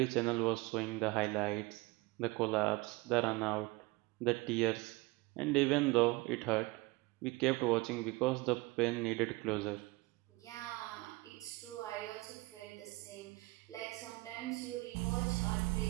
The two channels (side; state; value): left; quieter; 23.2 dB